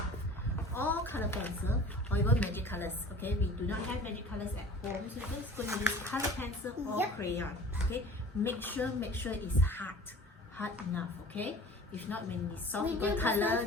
or color pencil or even magic colors. Okay? We do not have magic colors at home. So we're just going to use color pencil or Yep. crayon. Okay? Make sure it's hard enough. Okay? If not, when it's soft, We you can do color this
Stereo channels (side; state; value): both; normal; correlation 0.44